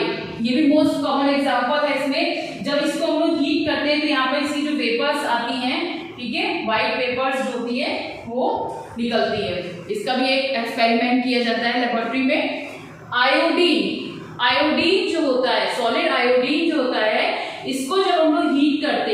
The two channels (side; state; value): both; identical; correlation 1.00